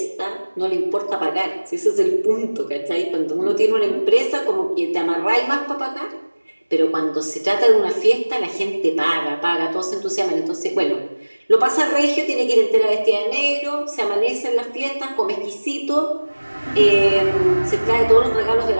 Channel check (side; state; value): both; inverted; correlation -1.00